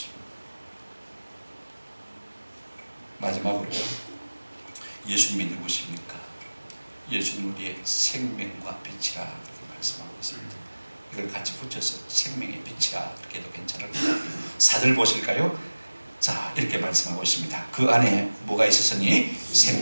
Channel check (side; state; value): both; inverted; correlation -1.00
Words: 마지막으로 예수님이 누구십니까? 예수님 우리의 생명과 빛이라 그렇게 말씀하고 있습니다. 이걸 같이 붙여서 생명의 빛이라 그렇게 해도 괜찮을 것 같아요. 4절 보실까요? 자, 이렇게 말씀하고 있습니다. 그 안에 뭐가 있었으니?